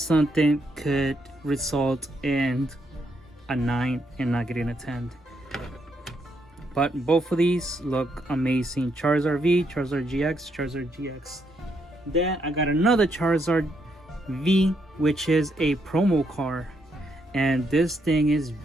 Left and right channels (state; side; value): normal; both; correlation 0.77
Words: could result in a 9 and not getting a 10. But both of these look amazing. Charizard V, Charizard GX, Charizard GX. Then I got another Charizard V, which is a promo card, and this thing is